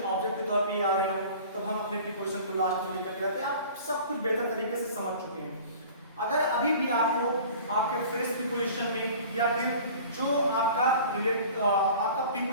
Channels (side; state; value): both; inverted; correlation -0.44